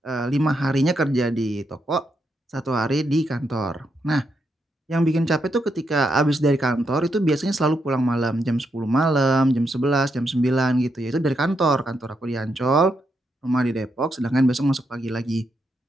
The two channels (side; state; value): both; normal; correlation 0.81